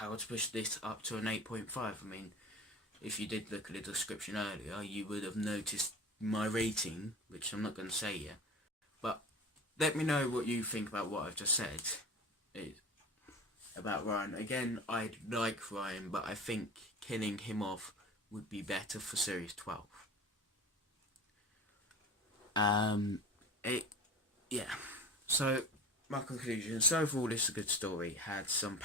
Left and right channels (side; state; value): both; normal; correlation 0.35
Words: to push this up to an 8.5. I mean, if you did look at the description earlier, you would have noticed my rating, which I'm not going to say yet. But let me know what you think about what I've just said about Ryan. Again, I like Ryan, but I think killing him off would be better for Series 12. Yeah. So, my conclusion. So overall, this is a good story. Had some